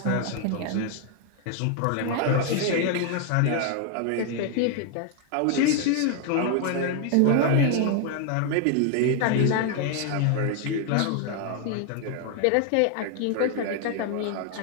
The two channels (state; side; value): different; both; correlation 0.00